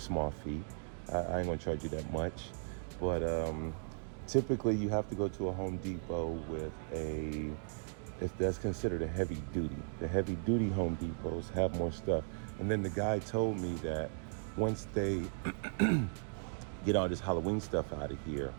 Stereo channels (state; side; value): silent; left; 53 dB below the other